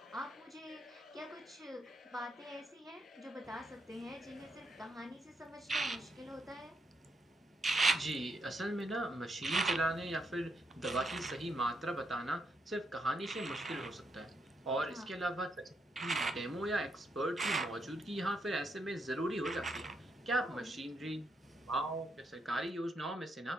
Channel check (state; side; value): normal; both; correlation 0.79